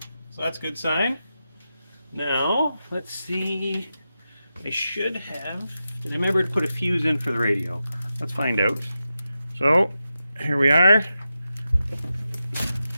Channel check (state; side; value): inverted; both; correlation -0.90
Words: so that's a good sign. Now, let's see. I should have. I remember to put a fuse in for the radio. Let's find out. So, here we are.